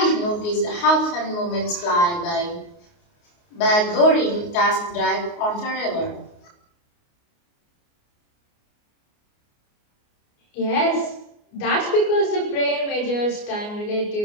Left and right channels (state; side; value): late; right; 29 ms